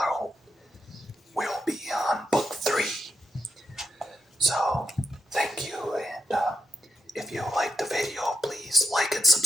we'll be on book 3. So, thank you, and if you like the video, please like and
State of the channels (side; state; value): both; normal; correlation 0.83